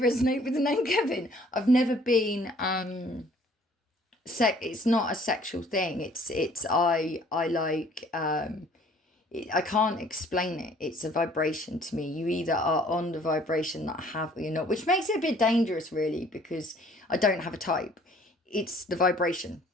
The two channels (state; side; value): normal; both; correlation 0.57